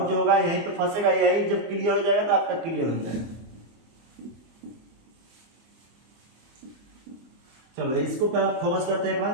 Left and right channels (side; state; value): left; late; 24 ms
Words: जो होगा यहीं पे फंसेगा, यही जब क्लियर हो जाएगा तो आपका क्लियर हो जाएगा। चलो इसको पे फोकस करते हैं एक